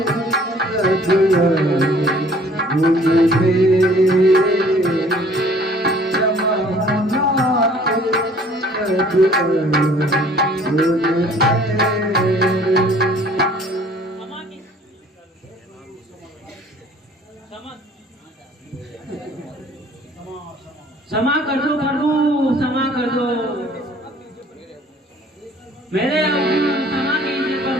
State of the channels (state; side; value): normal; both; correlation 0.55